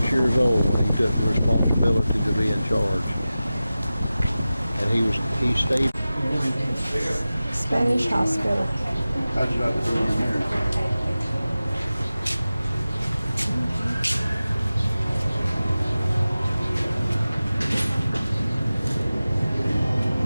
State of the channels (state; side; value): inverted; both; correlation -0.95